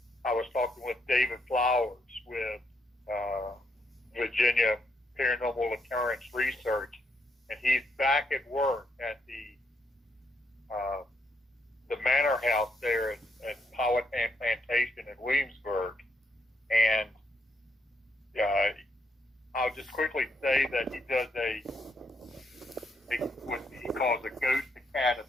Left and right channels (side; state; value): both; normal; correlation 0.77